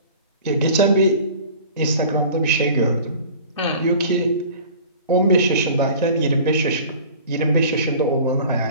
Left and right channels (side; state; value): both; inverted; correlation -0.43